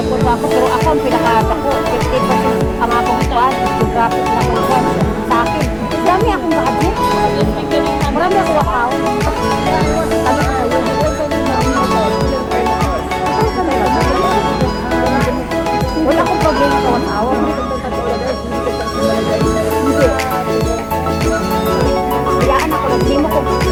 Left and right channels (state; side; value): identical; both; correlation 1.00